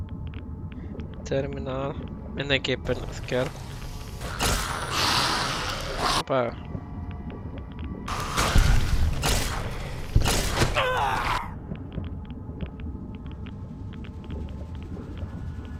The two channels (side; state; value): both; identical; correlation 1.00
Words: Terminál. Mindenképpen az kell. Hoppá.